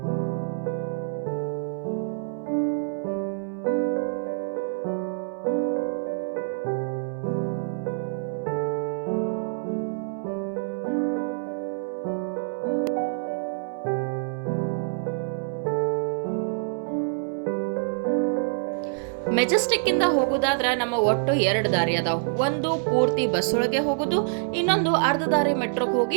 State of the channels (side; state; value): left; silent; 61 dB below the other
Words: ಮೆಜೆಸ್ಟಿಕ್ ಇಂದ ಹೋಗೋದಾದ್ರೆ ನಮ್ಮ ಒಟ್ಟು 2 ದಾರಿ ಅದಾವ. ಒಂದು ಪೂರ್ತಿ ಬಸ್ ಒಳಗೆ ಹೋಗೋದು, ಇನ್ನೊಂದು ಅರ್ಧ ದಾರಿ ಮೆಟ್ರೋಗೆ